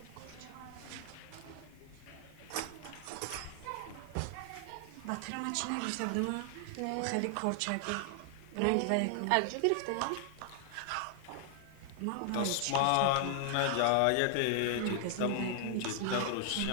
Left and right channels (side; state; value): both; different; correlation 0.00